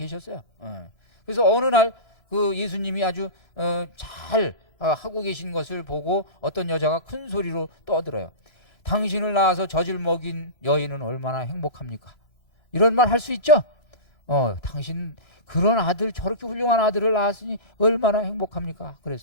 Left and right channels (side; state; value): right; late; 3.0 ms